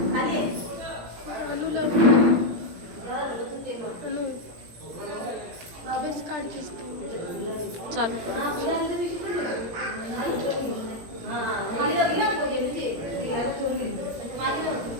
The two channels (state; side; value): late; left; 17 ms